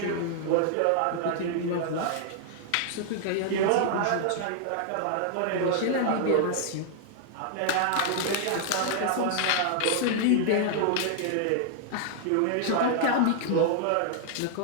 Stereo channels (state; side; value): different; both; correlation -0.01